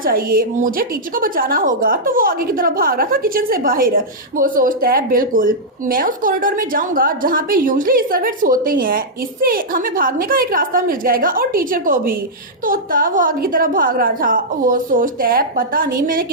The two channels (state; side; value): normal; both; correlation -0.09